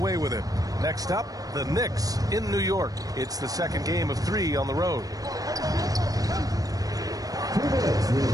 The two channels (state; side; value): late; left; 0.18 ms